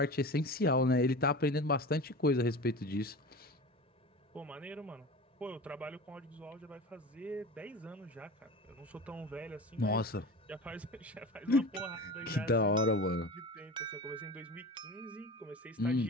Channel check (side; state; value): both; normal; correlation 0.32